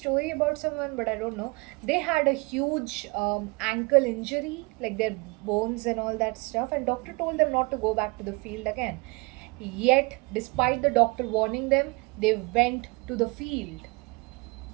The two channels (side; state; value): left; quieter; 27.8 dB